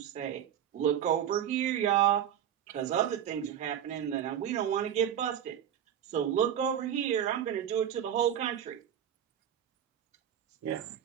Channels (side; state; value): left; quieter; 9.8 dB